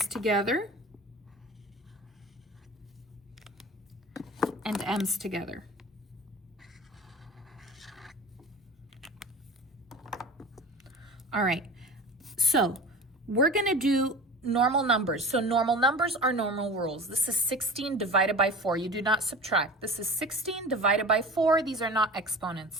together, and M's together. All right, so we're going to do normal numbers. So normal numbers are normal rules. This is 16 divided by 4. You do not subtract. This is 16 divided by 4. These are not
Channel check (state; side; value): normal; both; correlation 0.35